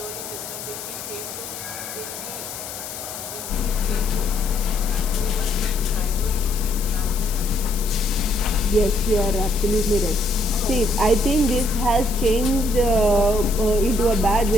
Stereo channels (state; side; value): noise; left; hiss, 9 dB below the sound